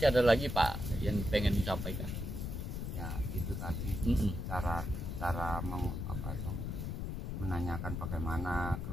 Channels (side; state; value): left; noise; rumble, 4 dB below the sound